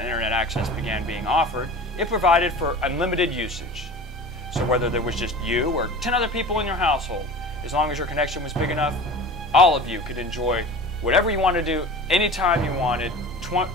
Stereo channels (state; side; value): normal; both; correlation 0.37